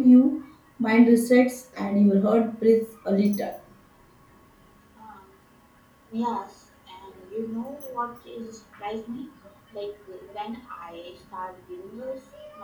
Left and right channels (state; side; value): identical; both; correlation 1.00